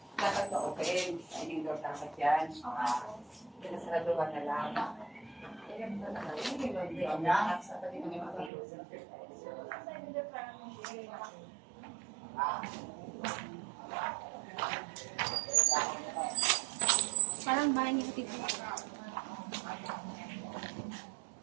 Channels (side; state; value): left; drops out; at 8.5 s